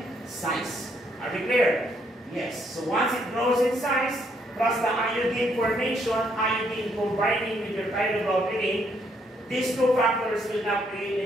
size. Are we clear? Yes. So once it grows in size, plus the iodine formation, iodine combining with your thyroglobulin, these two factors will now create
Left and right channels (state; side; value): normal; both; correlation 0.71